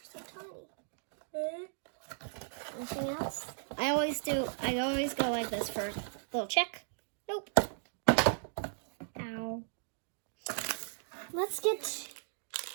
so tiny. Anything else? I always go like this for a little check. Nope. Ow. Let's get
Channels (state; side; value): silent; left; digital silence